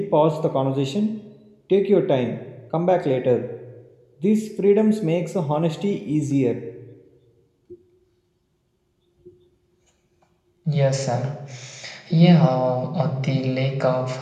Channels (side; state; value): both; identical; correlation 1.00